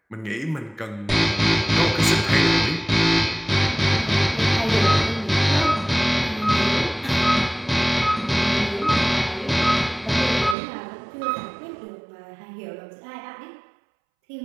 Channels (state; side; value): drops out; left; at 10.6 s